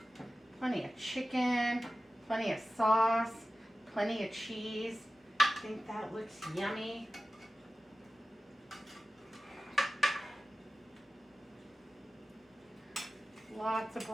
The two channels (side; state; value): both; normal; correlation 0.94